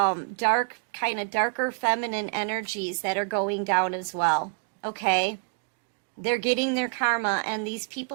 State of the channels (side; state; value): left; quieter; 39.2 dB